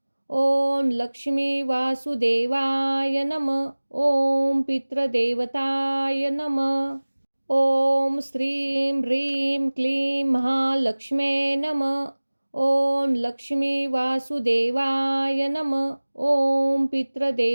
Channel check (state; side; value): inverted; both; correlation -1.00